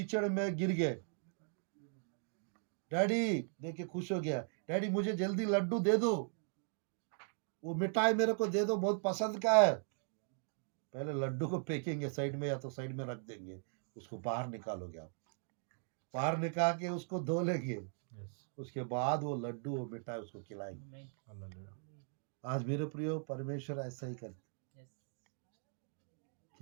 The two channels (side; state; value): left; silent; 52 dB below the other